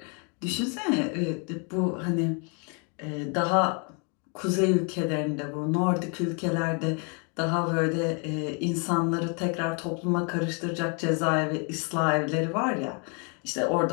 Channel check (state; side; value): quieter; right; 36.3 dB